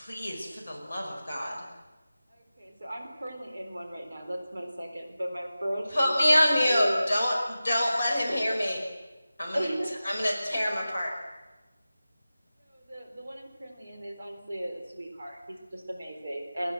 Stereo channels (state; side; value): inverted; both; correlation -0.95